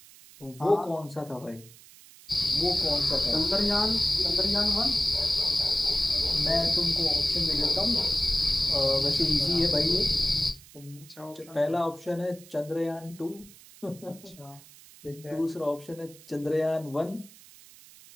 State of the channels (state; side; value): noise; right; hiss, 22 dB below the sound